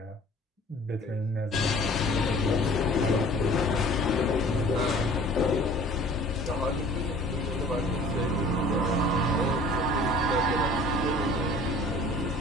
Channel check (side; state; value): both; normal; correlation 0.48